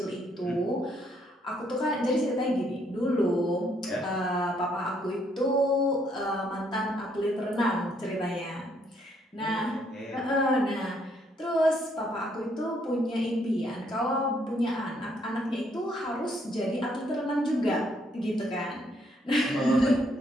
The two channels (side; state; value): both; normal; correlation 0.70